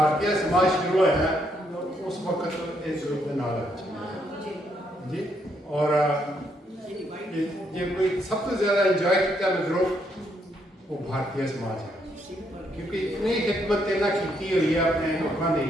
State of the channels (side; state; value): both; normal; correlation 0.74